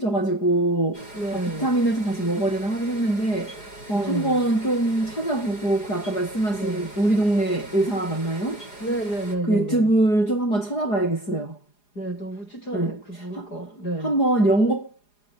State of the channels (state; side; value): late; right; 4.9 ms